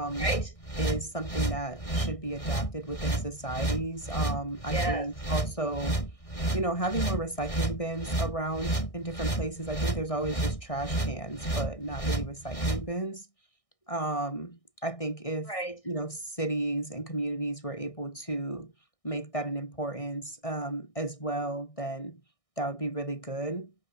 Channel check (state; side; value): late; right; 1.6 ms